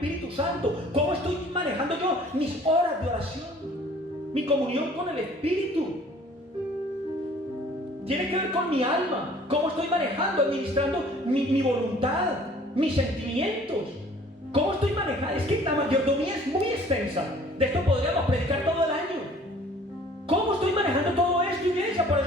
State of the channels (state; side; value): normal; both; correlation 0.52